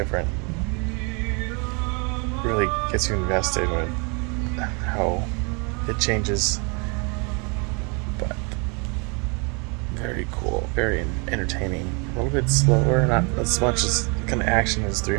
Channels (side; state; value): left; quieter; 33.3 dB